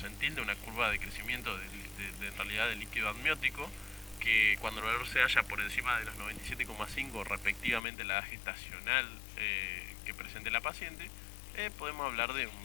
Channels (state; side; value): drops out; right; at 7.8 s